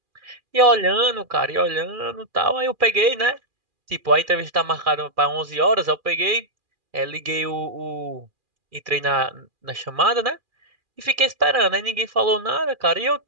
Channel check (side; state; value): left; late; 2.4 ms